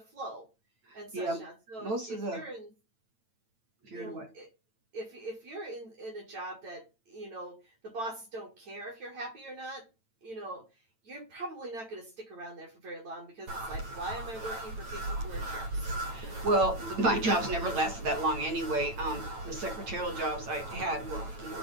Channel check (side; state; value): left; late; 9.0 ms